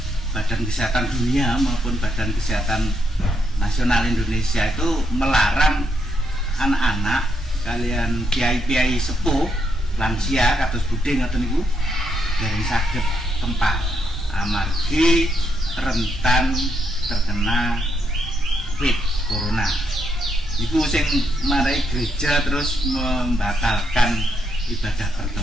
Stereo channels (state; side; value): normal; both; correlation 0.78